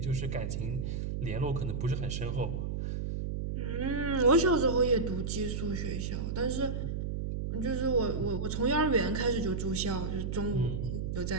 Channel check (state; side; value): noise; right; hum, 2 dB below the sound